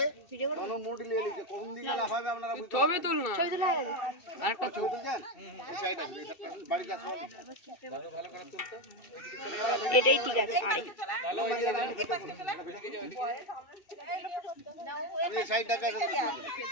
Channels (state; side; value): late; right; 2.7 ms